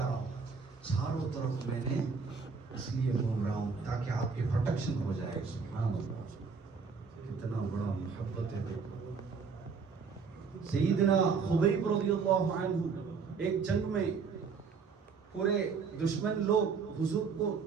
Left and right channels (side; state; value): left; quieter; 5.4 dB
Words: رہا ہوں. چاروں طرف میں نے اس لیے گھوم رہا ہوں تاکہ آپ کی پروٹیکشن ہو جائے. سبحان اللہ, کتنا بڑا محبت ہے. سیدنا خبیب رضی اللہ عنہ ایک جنگ میں پورے دشمن لوگ حضور کو